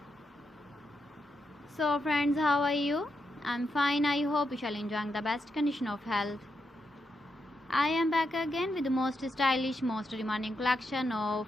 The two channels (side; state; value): both; normal; correlation 0.84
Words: So friends, how are you? I'm fine. I hope you shall enjoy the best condition of health. I am back again with the most stylish, most demanding collection of